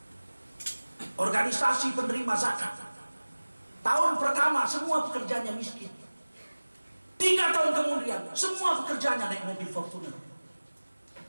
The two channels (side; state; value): both; inverted; correlation -1.00